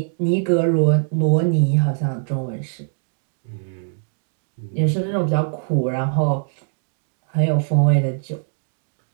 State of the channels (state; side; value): silent; left; digital silence